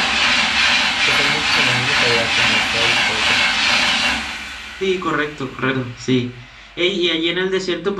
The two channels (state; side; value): identical; both; correlation 1.00